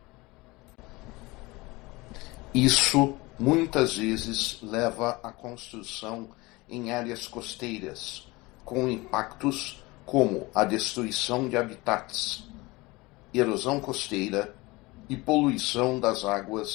Isso muitas vezes leva à construção em áreas costeiras, com impactos como a destruição de habitats, erosão costeira e poluição das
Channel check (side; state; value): right; quieter; 22.6 dB